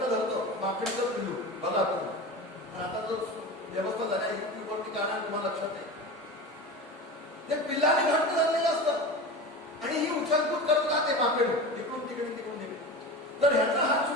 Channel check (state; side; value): normal; both; correlation 0.29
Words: माकडीचं पिल्लू बघा तुम्ही. आता जो व्यवस्था झाली आहे युट्यूबवरती काना तुम्हाला लक्षात आहे. ते पिल्लाने घट्ट धरलेलं असतं आणि ही उचलकूद करत राहते माकडे, इकडून तिकडे तिकडून तिकडे. तर ह्याचा हात